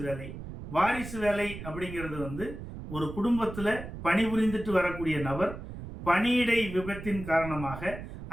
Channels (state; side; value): noise; right; rumble, 10 dB below the sound